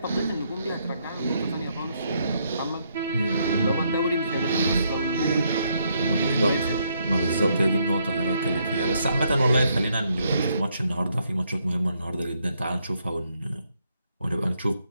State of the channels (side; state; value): both; inverted; correlation -0.74